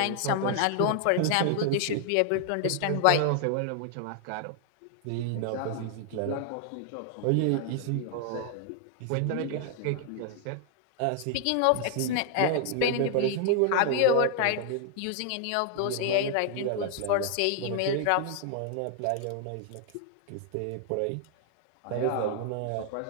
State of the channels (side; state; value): both; different; correlation 0.00